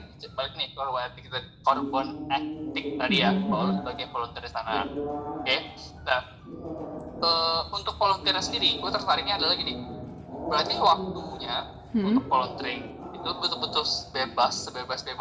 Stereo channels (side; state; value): both; identical; correlation 1.00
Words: balik nih korban etik tadi ya, kalau lu sebagai volunteer di sana. Oke. Nah untuk volunteer sendiri, gue tertariknya adalah gini. Berarti waktunya untuk volunteering itu betul-betul bebas,